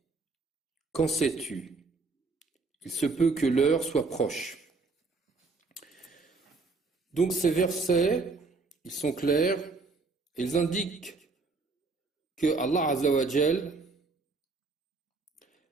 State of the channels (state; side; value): quieter; left; 3.8 dB